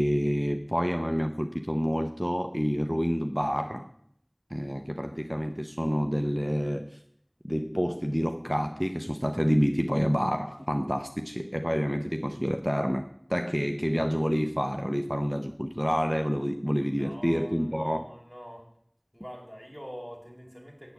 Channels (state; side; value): identical; both; correlation 1.00